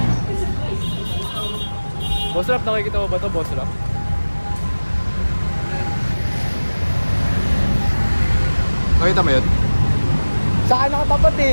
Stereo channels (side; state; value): both; inverted; correlation -1.00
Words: Boss Rap, nakikita mo ba ito, Boss Rap? Nakita mo yun? Saan nakatapat